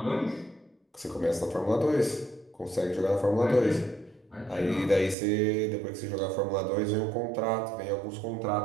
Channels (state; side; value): drops out; left; at 5.2 s